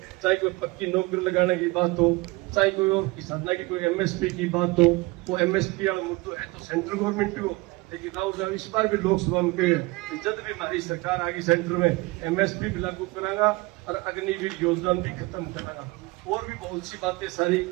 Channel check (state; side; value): quieter; left; 23.2 dB